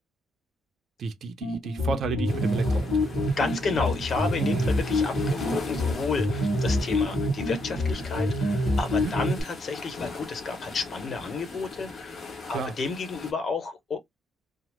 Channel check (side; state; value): both; normal; correlation 0.75